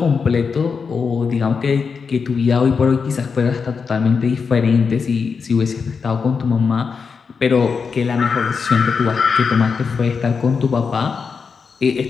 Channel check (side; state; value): right; quieter; 5.5 dB